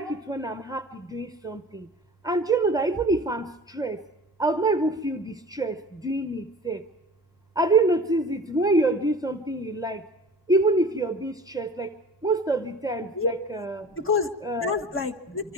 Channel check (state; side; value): normal; both; correlation 0.41